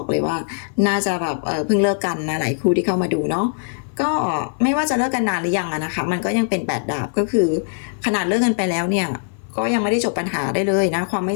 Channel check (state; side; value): silent; right; 57 dB below the other